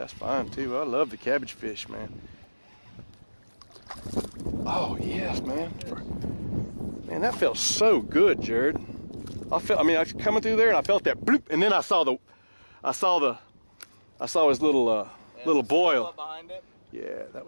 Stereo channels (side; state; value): both; inverted; correlation -1.00